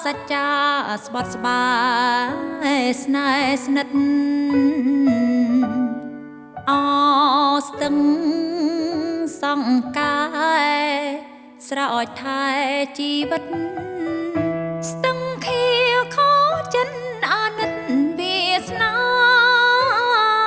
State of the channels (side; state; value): both; identical; correlation 1.00